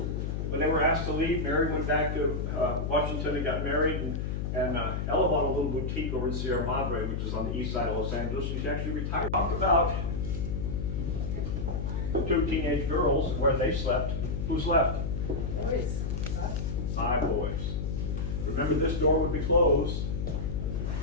When they were asked to leave, Mary went back to Washington and got married, and Ella bought a little boutique over in Sierra Madre, which is on the east side of Los Angeles. She actually retired. Talk about the two teenage girls, where they slept. Who's left? Boys. 5 boys. Remember, this door would be closed.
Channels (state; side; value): noise; left; hum, 2 dB below the sound